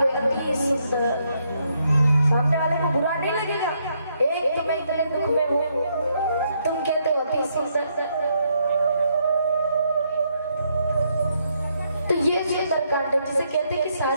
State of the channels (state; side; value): inverted; both; correlation -0.75